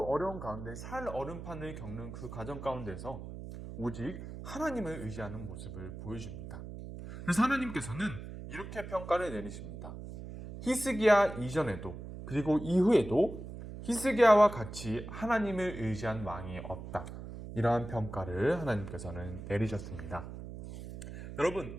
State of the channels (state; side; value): noise; right; hum, 10 dB below the sound